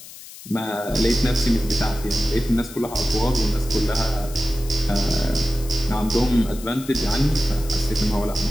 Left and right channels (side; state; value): left; noise; hiss, 16 dB below the sound